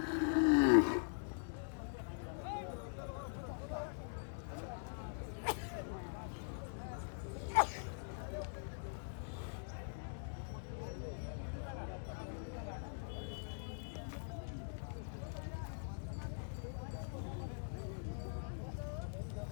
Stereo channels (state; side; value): silent; right; digital silence